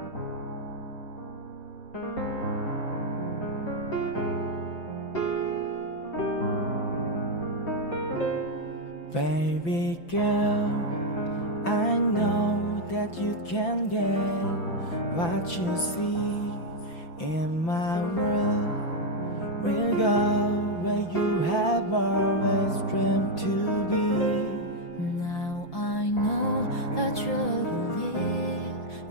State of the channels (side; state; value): right; late; 5.9 ms